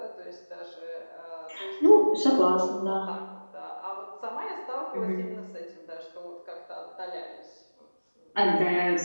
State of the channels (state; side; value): inverted; both; correlation -1.00